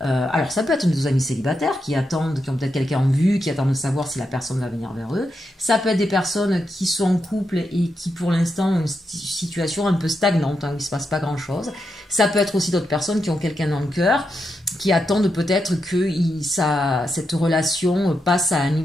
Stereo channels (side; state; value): both; normal; correlation 0.85